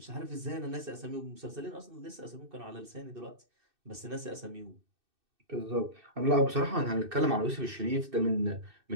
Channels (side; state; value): left; late; 2.6 ms